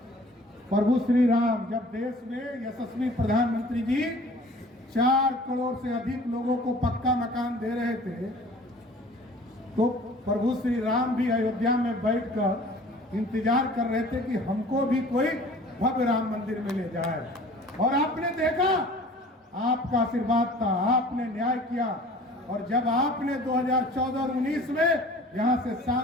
प्रभु श्री राम जब देश में यशस्वी प्रधानमंत्री जी 4 करोड़ से अधिक लोगों को पक्का मकान दे रहे थे, तो प्रभु श्री राम भी अयोध्या में बैठकर इंतजार कर रहे थे कि हमको भी कोई भव्य राम मंदिर में ले जाए। और आपने देखा, आपका आशीर्वाद था, आपने न्याय किया। और जब आपने 2014 और 19 में यहां से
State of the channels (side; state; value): both; normal; correlation 0.47